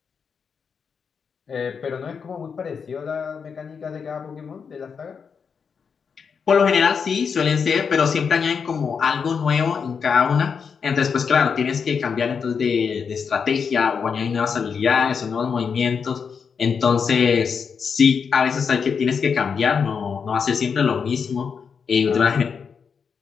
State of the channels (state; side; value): quieter; right; 6.2 dB